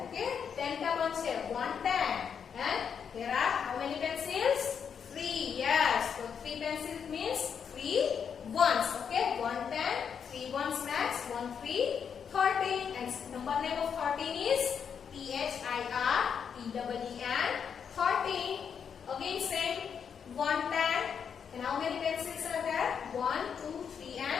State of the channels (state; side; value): quieter; right; 7.2 dB